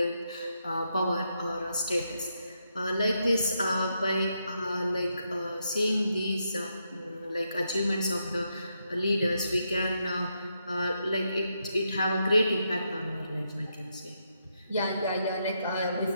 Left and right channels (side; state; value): both; inverted; correlation -0.81